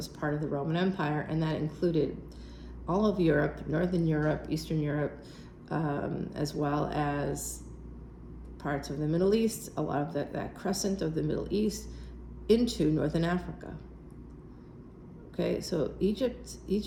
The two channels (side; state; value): both; identical; correlation 1.00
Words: part of the Roman Empire, and that included all of Europe, Northern Europe, Eastern Europe, as well as parts of the Middle East, a lot of that crescent of the Middle East into Northern Africa. Okay, so Egypt,